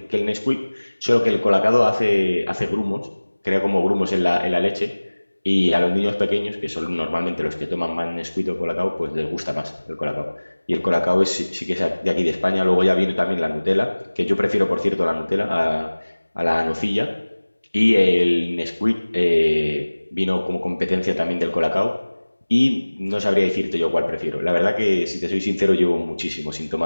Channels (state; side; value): inverted; both; correlation -1.00